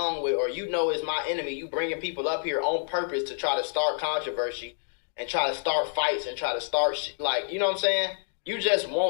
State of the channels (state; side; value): silent; right; digital silence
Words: with, or you know is my enemy. You bringing people up here on purpose to try to start controversy and try to start fights and try to start like, you know what I'm saying? You just